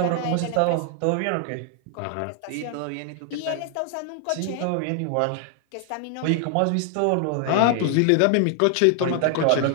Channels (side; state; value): both; different; correlation 0.00